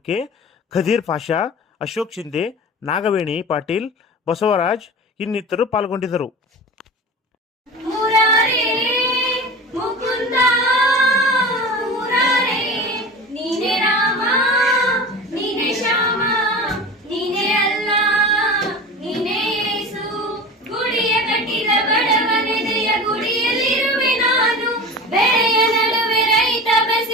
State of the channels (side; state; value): both; normal; correlation 0.33